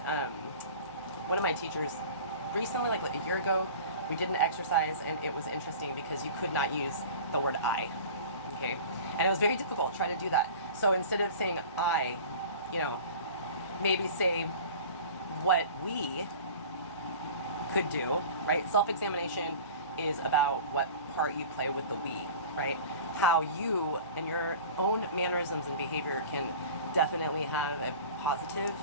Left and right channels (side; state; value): both; inverted; correlation -0.39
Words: One of my teachers recently, like a year ago, we did an exercise, and it was interesting because you could not use the word I, okay? And it was very difficult trying to do that. So instead of saying I, you know, maybe say what we could do, right? Self-examination is about what part you play with the we, right? How you and your own mannerisms and behavior can definitely have a positive